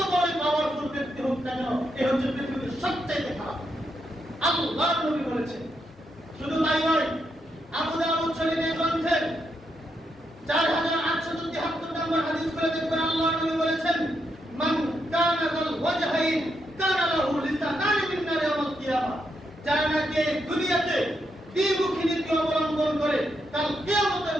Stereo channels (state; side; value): normal; both; correlation 0.81